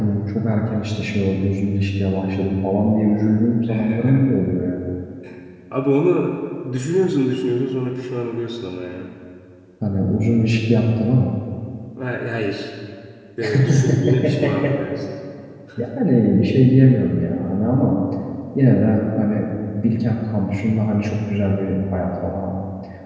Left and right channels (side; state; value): both; identical; correlation 1.00